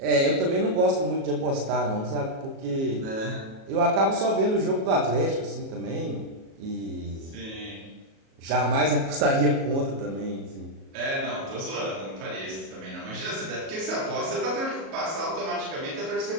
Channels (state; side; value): late; left; 37 ms